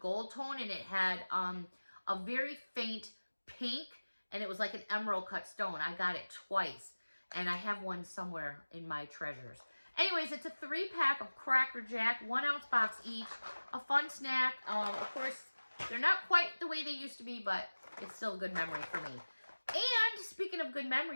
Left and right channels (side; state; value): both; inverted; correlation -1.00